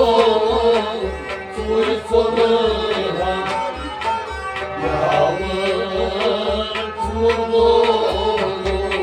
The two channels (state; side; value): identical; both; correlation 1.00